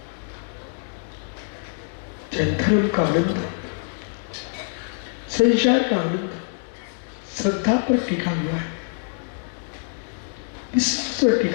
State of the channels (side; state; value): right; silent; 62 dB below the other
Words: चाहे धर्म का आनंद है संसार का आनंद श्रद्धा पर टिका हुआ है विश्वास पर